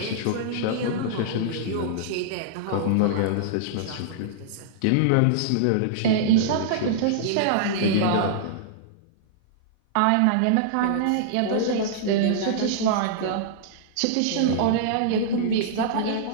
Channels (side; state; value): both; different; correlation -0.02